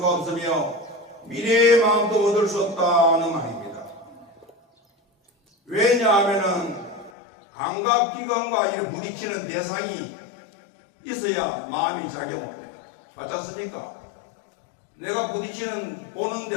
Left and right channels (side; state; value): right; drops out; at 7.1 s